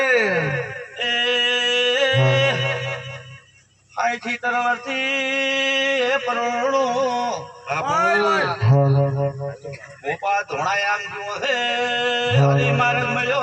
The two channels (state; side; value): identical; both; correlation 1.00